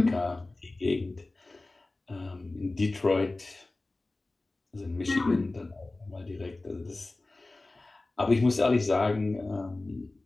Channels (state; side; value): quieter; right; 3.0 dB